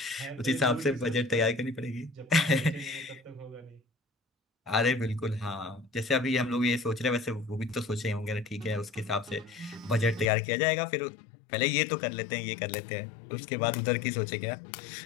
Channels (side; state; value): right; drops out; at 10.3 s